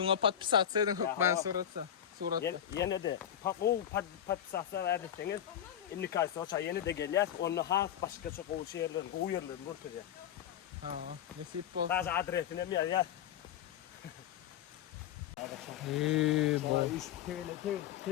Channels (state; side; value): quieter; right; 10.1 dB